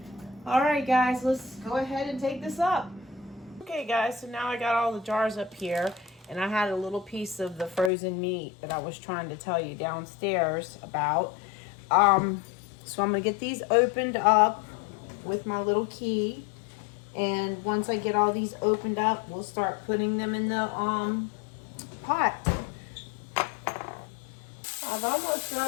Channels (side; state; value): right; drops out; at 7.9 s